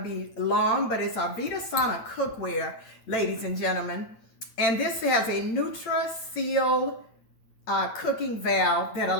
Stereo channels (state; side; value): late; right; 8.8 ms